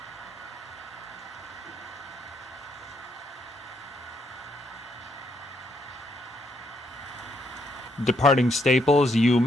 Departing Staples, you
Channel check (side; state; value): both; normal; correlation 0.75